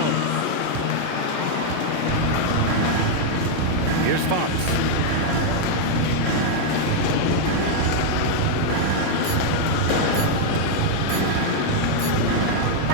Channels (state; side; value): different; both; correlation 0.00